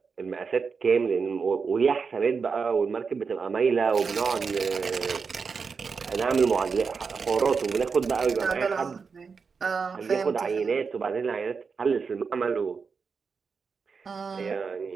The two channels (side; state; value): left; quieter; 5.3 dB